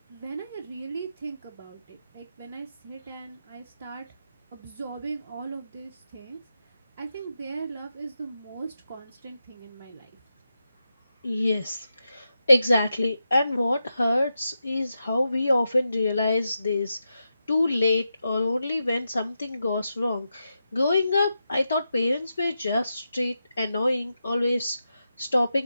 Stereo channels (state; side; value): inverted; both; correlation -0.88